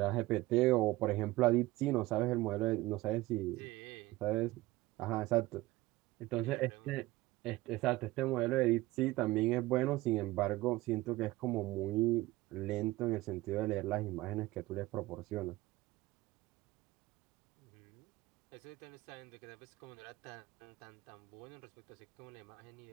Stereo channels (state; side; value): quieter; left; 18.7 dB